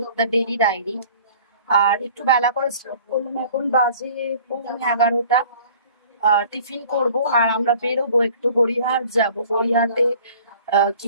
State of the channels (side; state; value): both; inverted; correlation -0.49